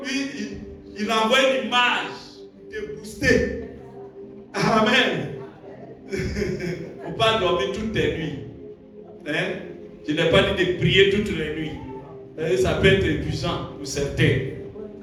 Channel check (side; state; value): both; identical; correlation 1.00